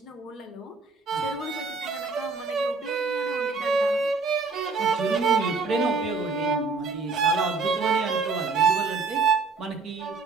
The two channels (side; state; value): left; quieter; 4.3 dB